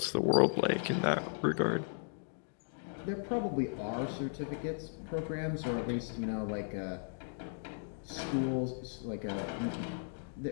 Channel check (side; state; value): right; silent; digital silence